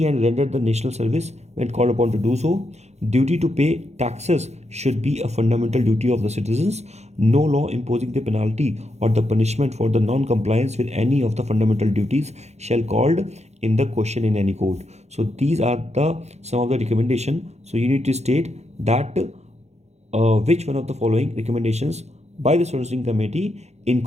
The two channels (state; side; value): late; left; 0.32 ms